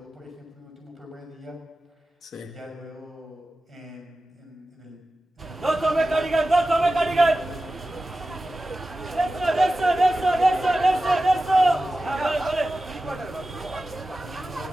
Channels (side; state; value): both; normal; correlation 0.94